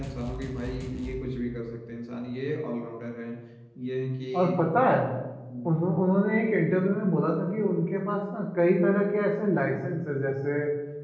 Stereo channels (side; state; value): both; identical; correlation 1.00